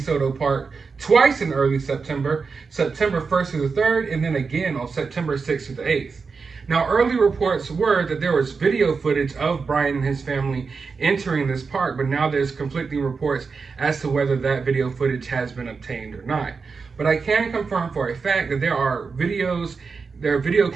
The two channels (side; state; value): left; quieter; 4.9 dB